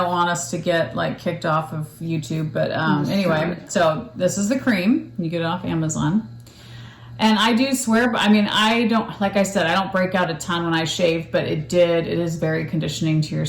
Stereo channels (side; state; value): both; identical; correlation 1.00